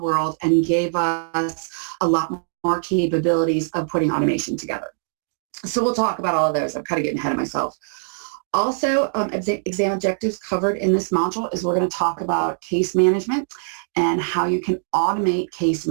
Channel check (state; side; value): silent; left; digital silence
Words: world and gave us a lot more capabilities of putting automation together. So we'll talk about all of those. I'm kind of getting ahead of myself. Also, exam objectives covered in this module is we're going to talk about case management and how you can automate case